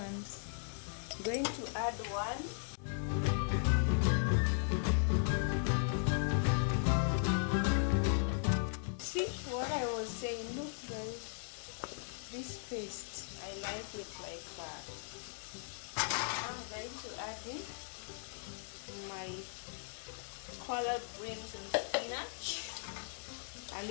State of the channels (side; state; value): right; silent; digital silence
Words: going to add one. See what I was saying, look guys, this paste, I like it like that. I'm going to add in my collard greens and spinach, a